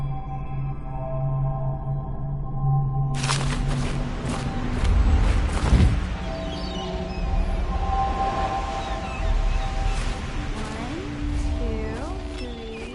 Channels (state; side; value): identical; both; correlation 1.00